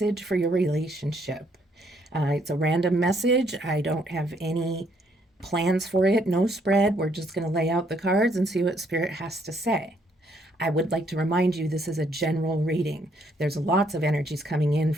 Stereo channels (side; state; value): both; normal; correlation 0.70